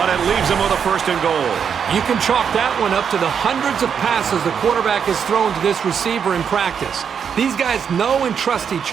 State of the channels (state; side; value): quieter; left; 7.2 dB